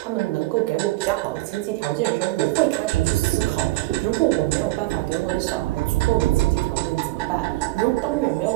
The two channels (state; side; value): quieter; left; 19.4 dB